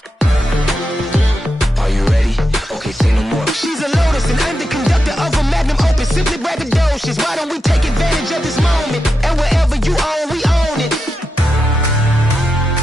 Are you ready? Okay, say no more. She's a Lotus and I'm the conductor of a Magnum Opus. Simply braggadocious. Why don't we take advantage of this moment? And wherever you own, we own it.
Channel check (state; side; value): normal; both; correlation 0.87